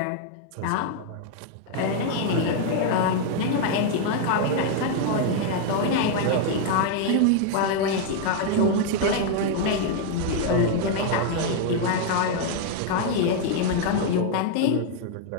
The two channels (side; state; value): both; different; correlation 0.00